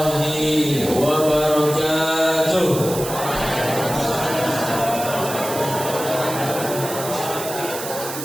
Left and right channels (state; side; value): noise; right; hiss, 8 dB below the sound